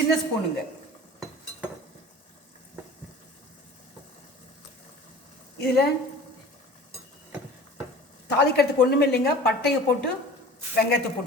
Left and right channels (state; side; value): normal; both; correlation 0.41